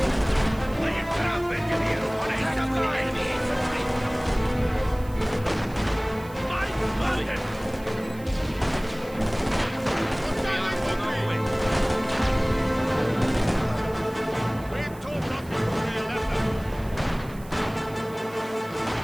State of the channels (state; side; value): noise; right; hiss, 22 dB below the sound